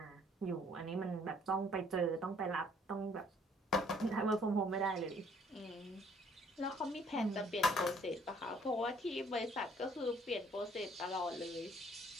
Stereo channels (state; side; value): normal; both; correlation 0.61